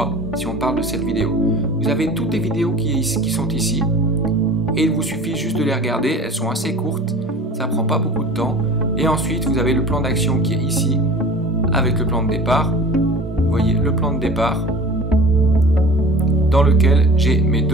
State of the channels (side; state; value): both; normal; correlation 0.41